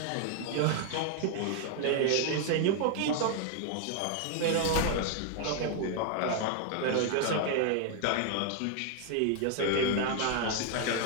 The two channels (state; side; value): different; both; correlation 0.00